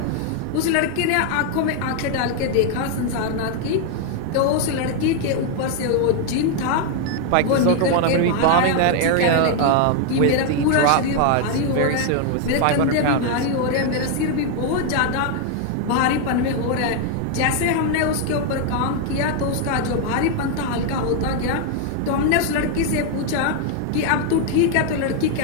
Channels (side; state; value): both; different; correlation 0.00